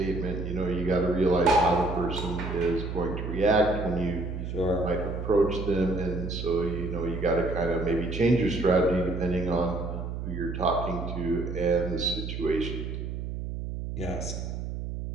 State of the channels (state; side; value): noise; right; hum, 5 dB below the sound